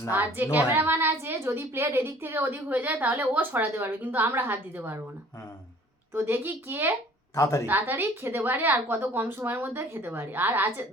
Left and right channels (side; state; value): both; normal; correlation 0.52